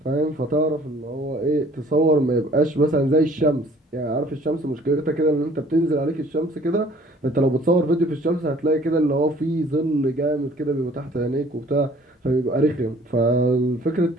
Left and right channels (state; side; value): normal; both; correlation 0.55